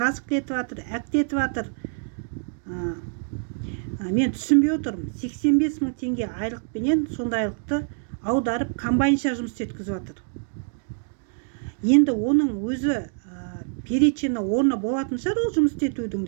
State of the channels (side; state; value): left; silent; 58 dB below the other